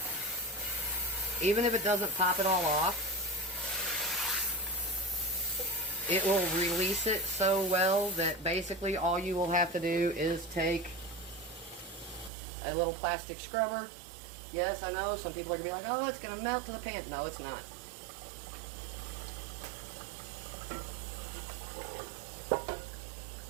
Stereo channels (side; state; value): left; drops out; at 12.3 s